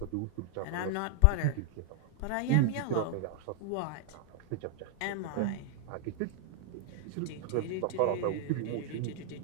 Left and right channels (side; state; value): both; different; correlation -0.01